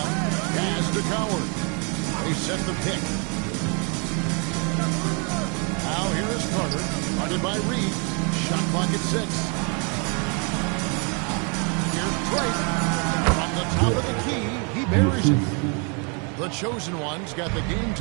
Pass to Coward. They set the pick. Now here is Carter. Guarded by Reed. Shot clock at 6. Here's Drake. From the top of the key, he buries it. The chosen one's got the game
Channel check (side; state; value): left; quieter; 35.6 dB